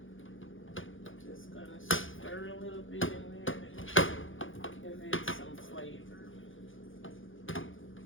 Just gonna stir a little bit in there to give it some flavor.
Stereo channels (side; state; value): right; late; 0.58 ms